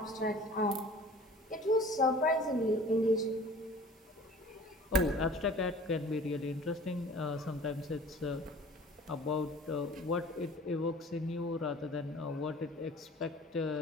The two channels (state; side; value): normal; both; correlation 0.46